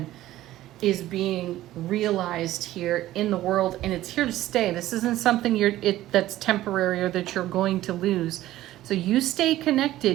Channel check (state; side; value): quieter; left; 14.9 dB